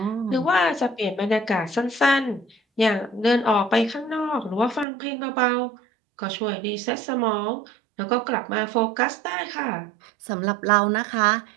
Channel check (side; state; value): left; drops out; at 4.9 s